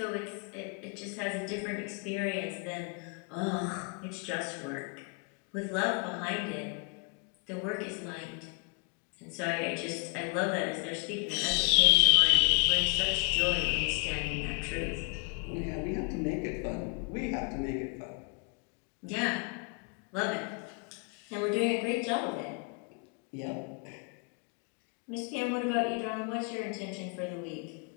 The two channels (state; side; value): quieter; right; 35.9 dB